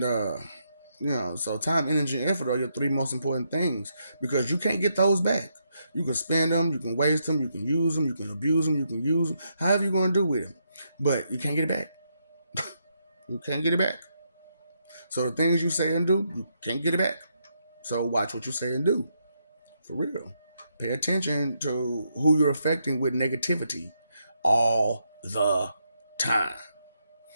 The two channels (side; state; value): both; inverted; correlation -0.79